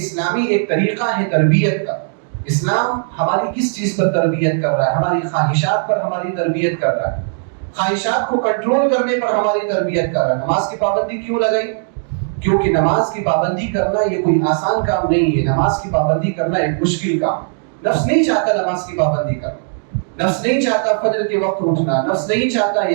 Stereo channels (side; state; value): left; silent; digital silence